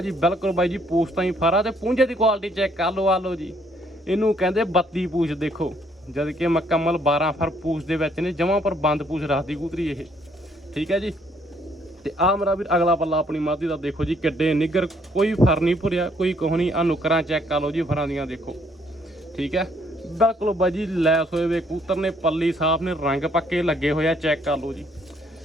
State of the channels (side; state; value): both; normal; correlation 0.67